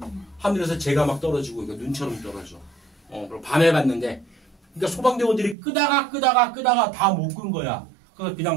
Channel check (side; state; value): left; drops out; at 5.6 s